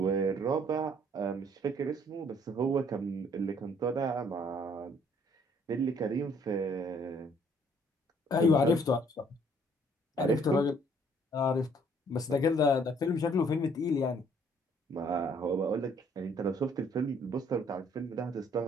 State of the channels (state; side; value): normal; both; correlation 0.62